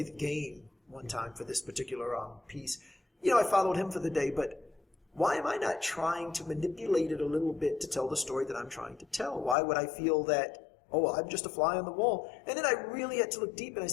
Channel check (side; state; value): right; drops out; at 9.6 s